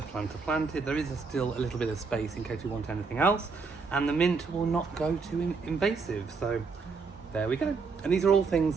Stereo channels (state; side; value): quieter; left; 4.7 dB